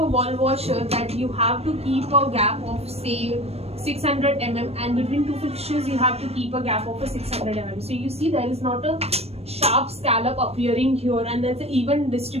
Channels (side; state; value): left; late; 0.30 ms